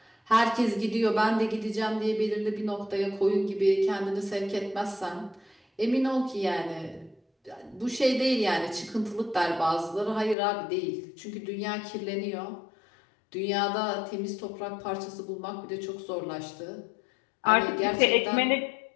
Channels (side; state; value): right; drops out; at 10.4 s